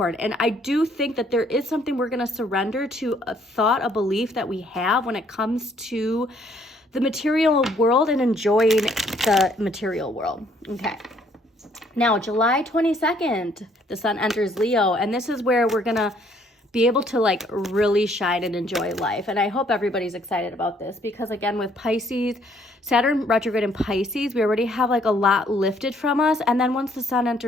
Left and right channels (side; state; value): both; normal; correlation 0.65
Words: And I do think that there is something we're going to surrender to, a thought, a belief that we have when it comes to the material world and enjoying the material world. Okay. Now, July 22nd, the sun enters Leo, and this is where we're going to be able to like really shine and enjoy life. And I hope everybody's excited about this because again, with Pisces, Saturn retrograde in Pisces, we already have like a lot lifted from us. And then once the sun